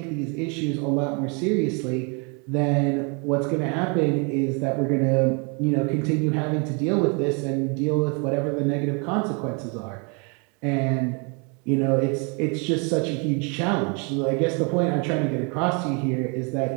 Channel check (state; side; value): quieter; left; 34.2 dB